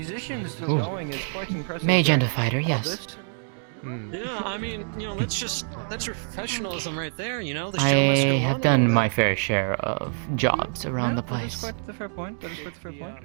Ooh. going is quite impressive. mage and a fighter, yes. Yeah, I mean, that's professionalism right there, you know. The show I must go have on. done my fair share of jobs around the place. That's a fair point. That is quite a fair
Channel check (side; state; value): left; silent; digital silence